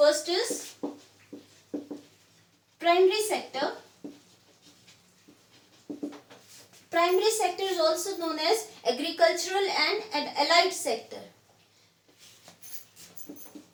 is primary sector. Primary sector is also known as agricultural and allied sector.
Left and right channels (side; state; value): both; identical; correlation 1.00